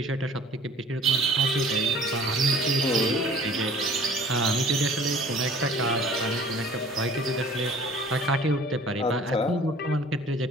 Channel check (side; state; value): both; normal; correlation 0.49